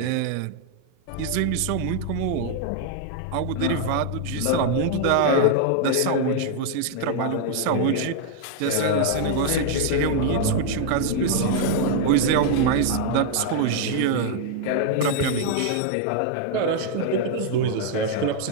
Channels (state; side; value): different; both; correlation 0.00